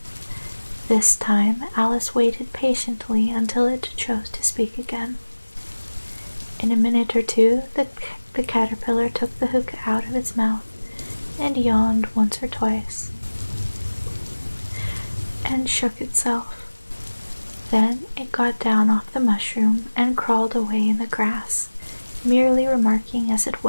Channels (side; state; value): both; inverted; correlation -1.00